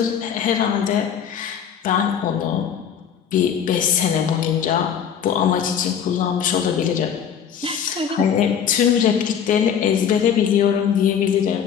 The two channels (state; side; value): quieter; right; 8.2 dB